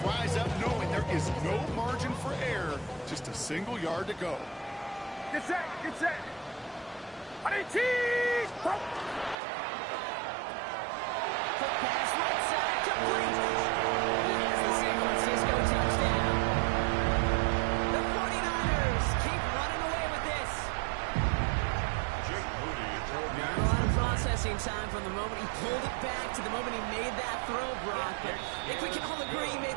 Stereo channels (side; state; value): left; drops out; at 9.3 s